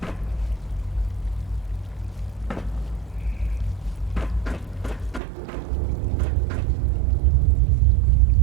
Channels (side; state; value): left; drops out; at 5.2 s